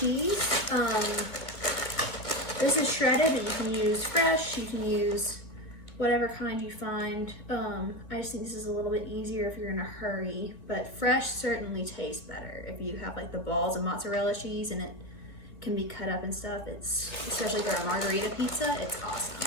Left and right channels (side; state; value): right; late; 2.0 ms